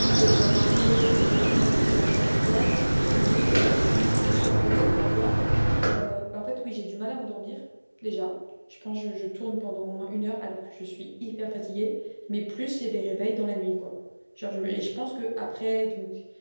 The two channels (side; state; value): both; inverted; correlation -1.00